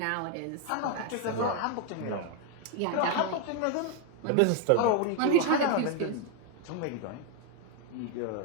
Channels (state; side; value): different; both; correlation 0.01